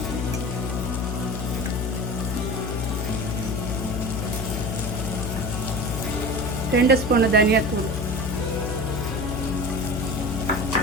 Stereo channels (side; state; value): left; noise; hum, 2 dB below the sound